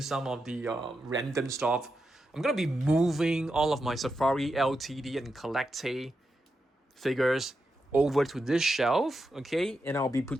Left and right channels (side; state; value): both; normal; correlation 0.87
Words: some of the random stuff. I'm going to be moving all of my Safari LTD and Collecte figures over to this shelf, okay? And I'll be